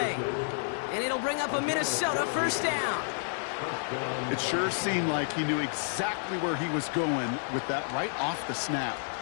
And it'll bring up a Minnesota first down. It sure seemed like he knew exactly where he was going with that right off the snap.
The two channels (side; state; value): right; silent; 58 dB below the other